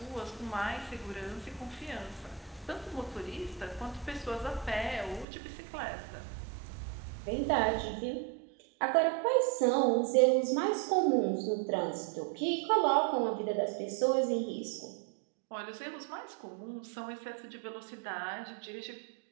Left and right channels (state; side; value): drops out; left; at 5.2 s